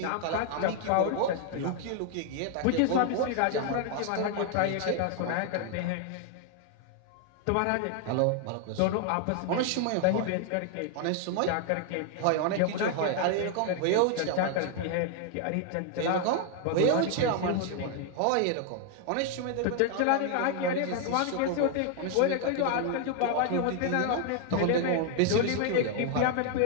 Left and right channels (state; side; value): different; both; correlation 0.00